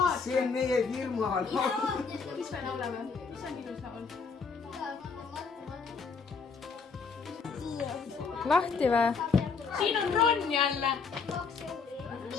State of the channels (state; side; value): quieter; right; 5.1 dB